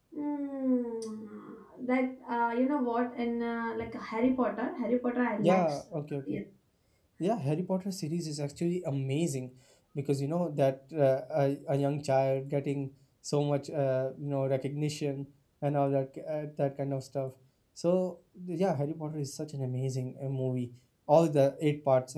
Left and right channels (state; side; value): identical; both; correlation 1.00